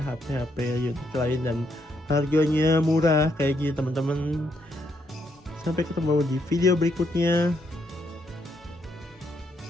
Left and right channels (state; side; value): normal; both; correlation 0.75